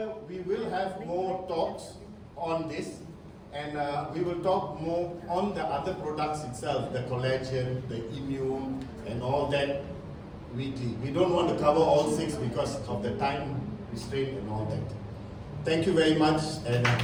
we will have more talks on this, and we will talk more on the other products itself, the collagen, the immune, and all that weekly. We don't want to cover all 6 because of the time restraint and all that. Thank you very much, and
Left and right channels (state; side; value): identical; both; correlation 1.00